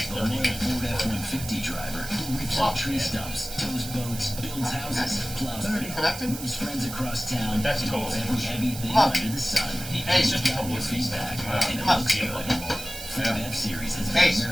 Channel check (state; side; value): noise; right; hiss, 10 dB below the sound